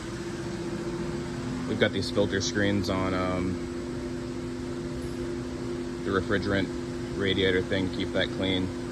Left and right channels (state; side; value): identical; both; correlation 1.00